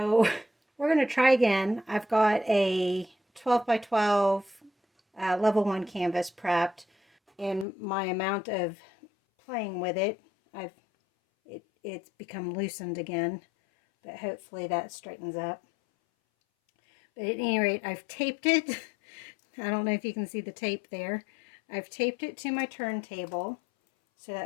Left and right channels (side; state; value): right; drops out; at 7.7 s